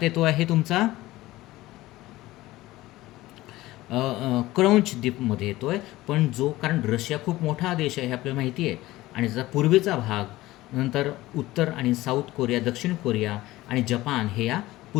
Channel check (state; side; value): quieter; right; 17.6 dB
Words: येतो आहे तुमचा क्रौंच द्वीपमध्ये येतो आहे. पण कारण रशिया खूप मोठा देश आहे हे आपल्याला माहिती आहे आणि त्याचा पूर्वेचा भाग नंतर उत्तर आणि साऊथ कोरिया, दक्षिण कोरिया आणि जपान हे या